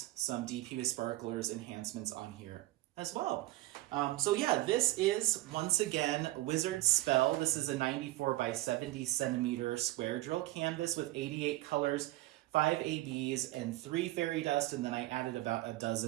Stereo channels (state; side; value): quieter; left; 17.5 dB